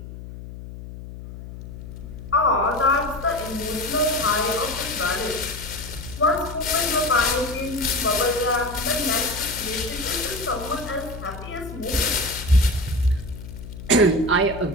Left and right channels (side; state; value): left; noise; hum, 12 dB below the sound